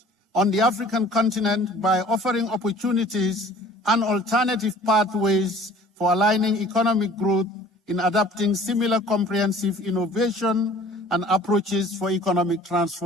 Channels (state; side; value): normal; both; correlation 0.50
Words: on the African continent by offering opportunities and alternative pathways for aligning economic growth in adapting similar comprehensive innovation and approaches for economic